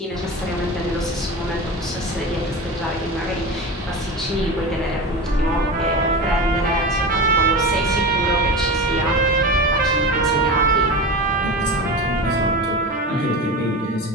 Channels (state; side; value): normal; both; correlation 0.27